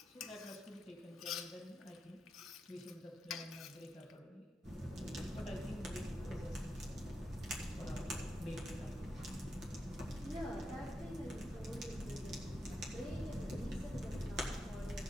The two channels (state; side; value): normal; both; correlation 0.86